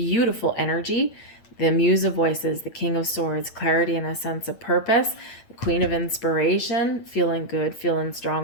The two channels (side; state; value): right; late; 8.9 ms